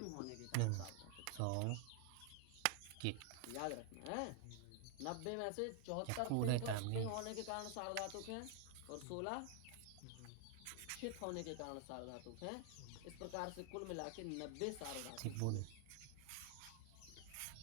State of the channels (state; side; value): different; both; correlation 0.00